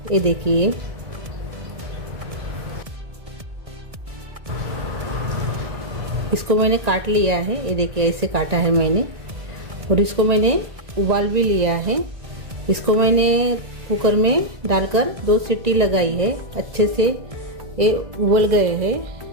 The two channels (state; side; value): late; left; 1.9 ms